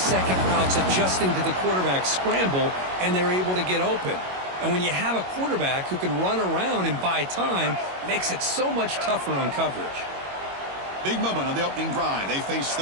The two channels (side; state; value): left; late; 22 ms